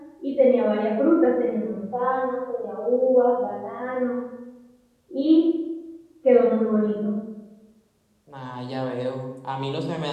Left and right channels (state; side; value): identical; both; correlation 1.00